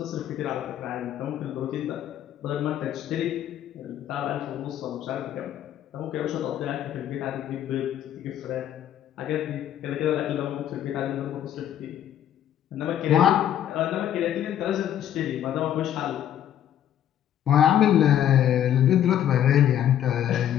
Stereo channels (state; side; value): quieter; right; 10.7 dB